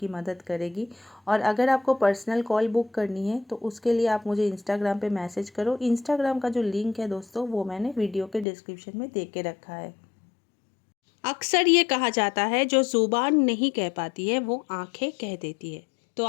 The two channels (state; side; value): drops out; right; at 8.5 s